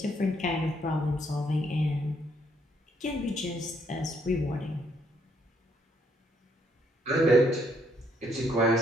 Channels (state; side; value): normal; both; correlation 0.70